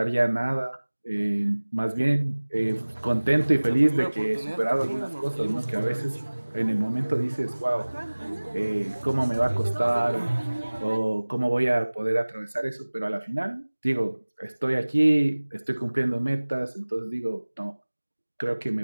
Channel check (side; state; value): both; inverted; correlation -1.00